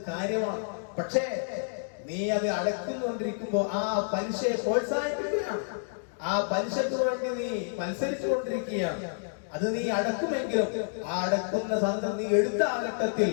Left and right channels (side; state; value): right; silent; digital silence